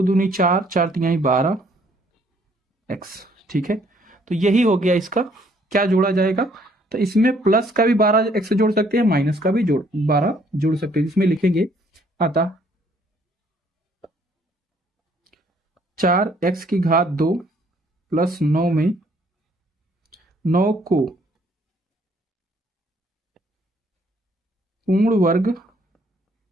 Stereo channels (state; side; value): normal; both; correlation 0.64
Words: दूनी 4, 4 तिहाई 12 x। ठीक है, तो यही हो गया इसका क्या जोड़ा जाएगा। तो इसमें प्लस का भी 12 x जोड़ सकते हैं, माइनस का भी 12 जोड़ सकते हैं। इसमें लिखेंगे अतः 4x की घात 2 प्लस 9 में 9 को पूर्ण वर्ग